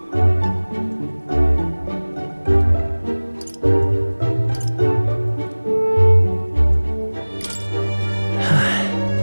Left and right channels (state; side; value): inverted; both; correlation -1.00